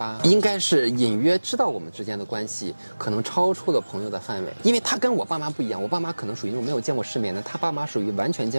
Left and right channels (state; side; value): inverted; both; correlation -1.00